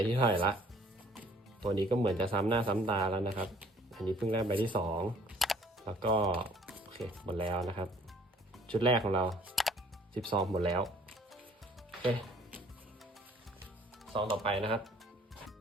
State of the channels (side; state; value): both; normal; correlation 0.56